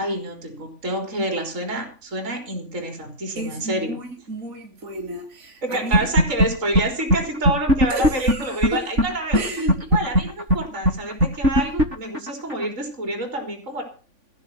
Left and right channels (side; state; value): left; late; 3.5 ms